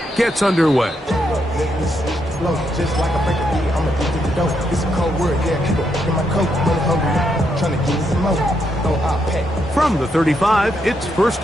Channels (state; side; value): normal; both; correlation 0.79